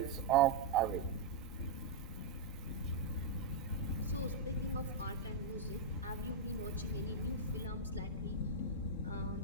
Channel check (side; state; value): left; quieter; 3.4 dB